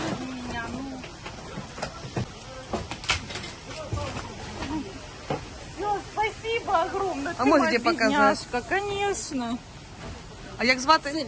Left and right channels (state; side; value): identical; both; correlation 1.00